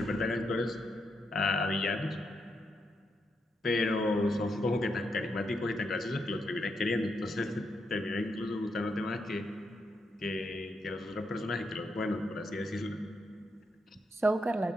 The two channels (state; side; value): normal; both; correlation 0.81